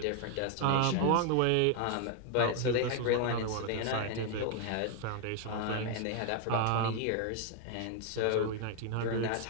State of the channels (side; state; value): both; different; correlation 0.00